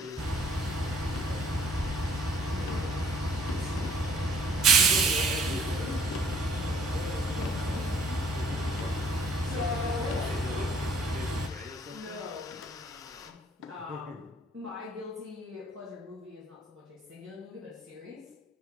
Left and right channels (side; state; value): both; normal; correlation 0.59